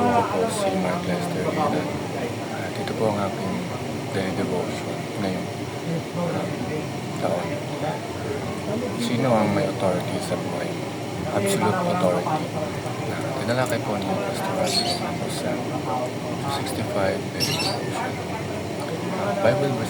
ako po si Mark Lester Hilan. At ito po ang aking daily devotion ngayong taon. Sino ang may authority sa buhay mo? Absolute authority. Tinalakay po ni Pastor Russell sa 65 daily devotion. Bible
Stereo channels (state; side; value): identical; both; correlation 1.00